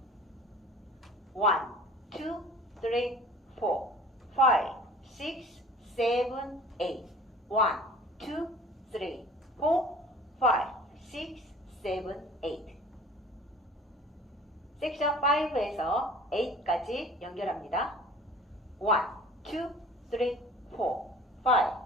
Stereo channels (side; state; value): both; normal; correlation 0.47